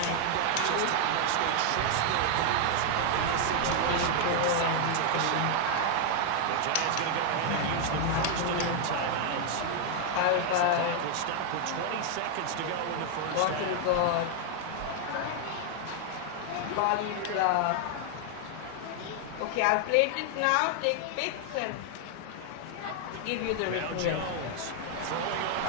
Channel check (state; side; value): different; both; correlation 0.00